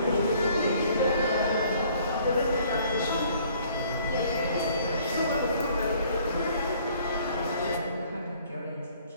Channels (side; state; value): both; inverted; correlation -0.59